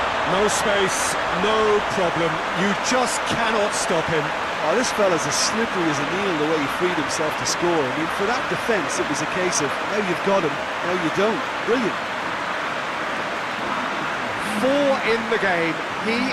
No space, no problem. You just cannot stop him. Oh, this fella's as slippery as a needle the way he freed himself to score. I mean, for that defence, it was a case of, now you've got him, now you don't. Brilliant. 4 in the game. He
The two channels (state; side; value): identical; both; correlation 1.00